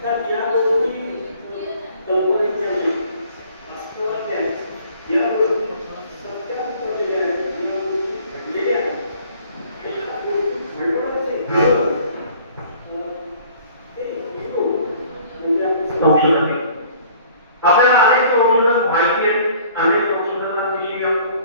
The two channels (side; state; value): both; inverted; correlation -0.54